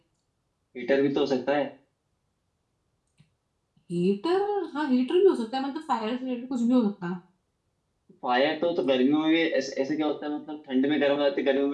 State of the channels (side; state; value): both; identical; correlation 1.00